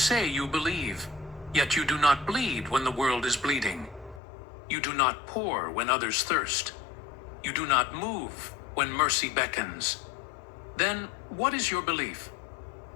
you believe, yet you do not bleed when the world is bleeding. You do not pour when others thirst. You do not move when mercy beckons. Then what is your belief?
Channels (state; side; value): drops out; right; at 4.2 s